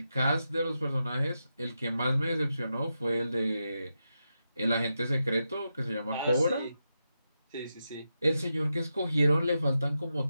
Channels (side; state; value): both; inverted; correlation -0.88